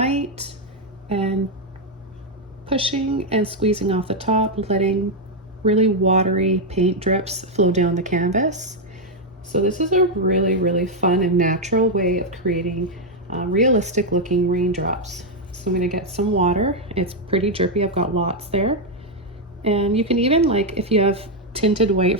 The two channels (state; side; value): normal; both; correlation 0.01